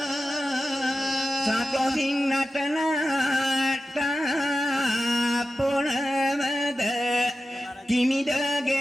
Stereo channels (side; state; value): both; normal; correlation 0.93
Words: සතොසින් නටනට පොළවද